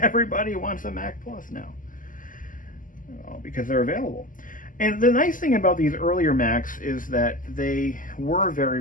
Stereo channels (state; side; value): late; right; 0.38 ms